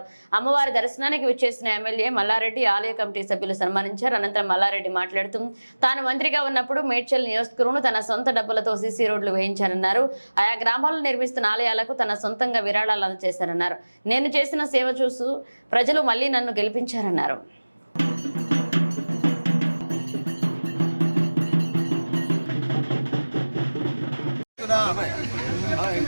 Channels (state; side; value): inverted; both; correlation -1.00